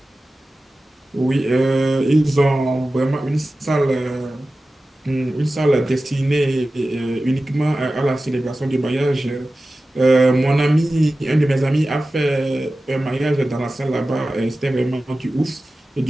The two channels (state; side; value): normal; both; correlation 0.95